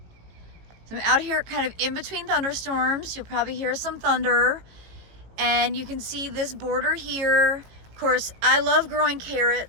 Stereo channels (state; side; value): late; left; 18 ms